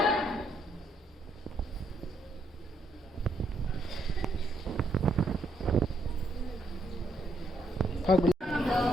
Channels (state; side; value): normal; both; correlation 0.74